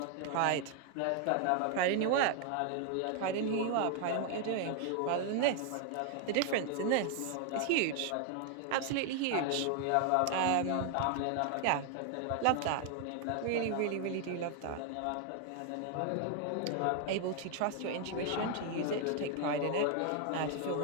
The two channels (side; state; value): both; different; correlation 0.00